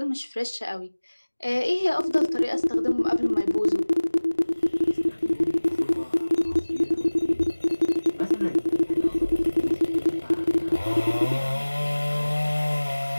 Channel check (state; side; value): inverted; both; correlation -1.00